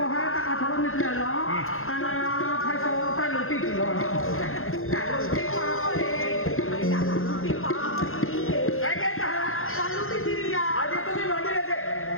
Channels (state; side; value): late; right; 0.61 ms